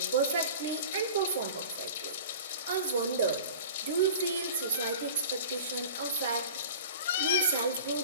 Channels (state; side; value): inverted; both; correlation -0.39